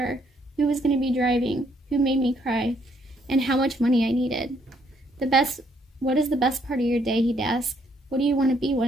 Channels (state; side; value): normal; both; correlation 0.70